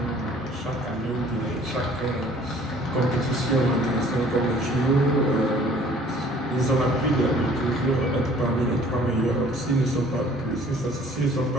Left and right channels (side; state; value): both; normal; correlation 0.54